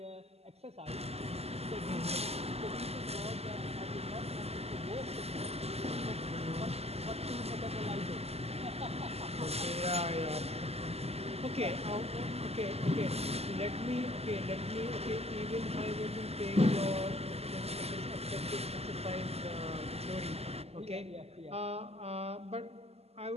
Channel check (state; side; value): late; left; 0.30 ms